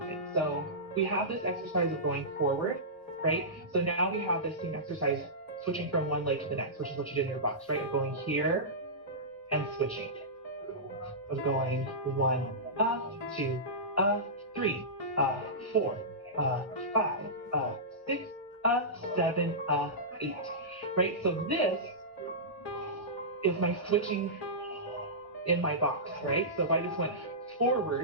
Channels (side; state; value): both; normal; correlation -0.17